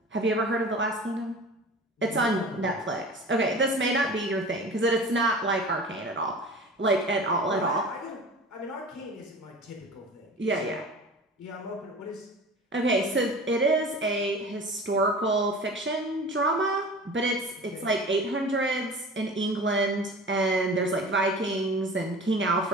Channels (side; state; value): both; normal; correlation 0.38